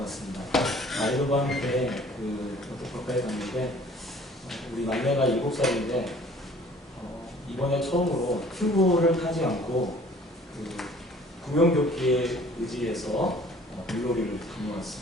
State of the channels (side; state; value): both; normal; correlation 0.52